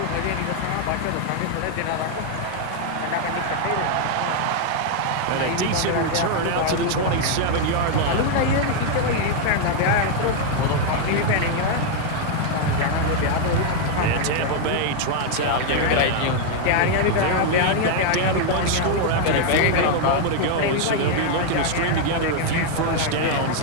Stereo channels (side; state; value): both; different; correlation 0.00